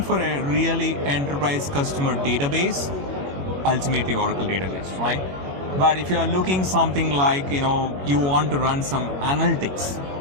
for a really enterprise customer database, ultimately Oracle database, right? But if you are looking something like, you want to run some analytics,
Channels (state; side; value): late; left; 21 ms